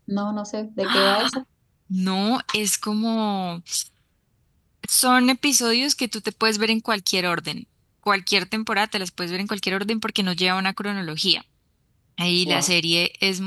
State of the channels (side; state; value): both; identical; correlation 1.00